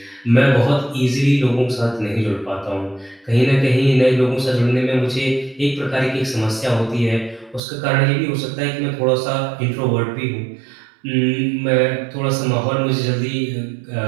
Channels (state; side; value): drops out; left; at 7.6 s